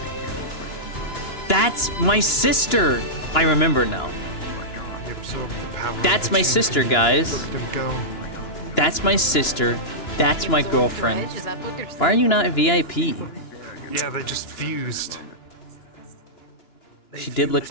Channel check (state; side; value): late; right; 2.9 ms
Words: That's my sister. I remember now. That's my sister, guys. That's my sister. That's my girlfriend. Why are you not a VIP? Yeah, they just fused. She did lick